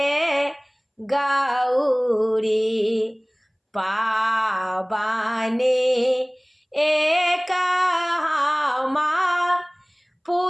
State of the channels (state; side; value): identical; both; correlation 1.00